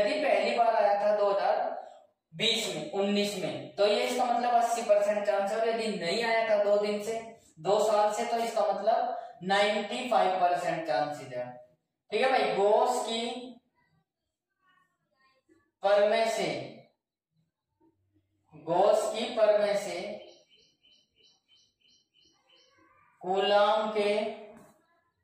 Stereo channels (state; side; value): identical; both; correlation 1.00